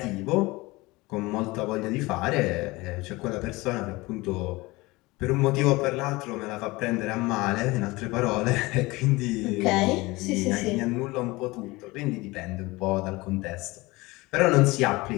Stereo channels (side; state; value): right; quieter; 21.9 dB